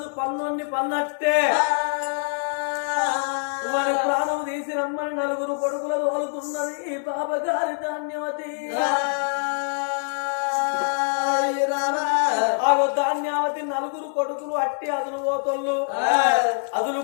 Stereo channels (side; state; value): right; silent; digital silence